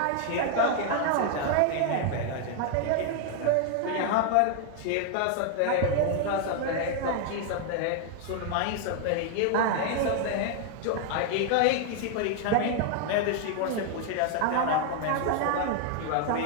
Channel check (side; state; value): both; different; correlation 0.00